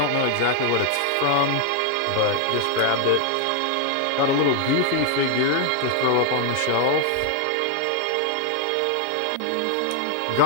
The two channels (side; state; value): both; different; correlation 0.00